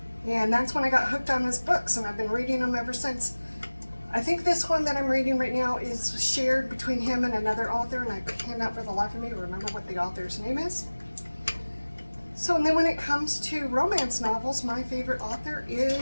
and that's when I got hooked on his books, and I've been reading them ever since. I think this one that I'm reading right now is shared between him and another author, and I cannot for the life of me remember what the author's name is. So, and then when it comes to romance novels, my favorite author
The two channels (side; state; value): both; inverted; correlation -1.00